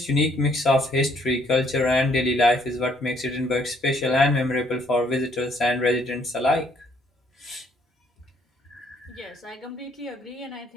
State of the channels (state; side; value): normal; both; correlation 0.66